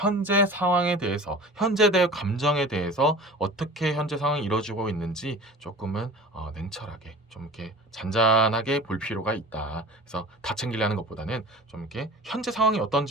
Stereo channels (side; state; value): both; normal; correlation 0.39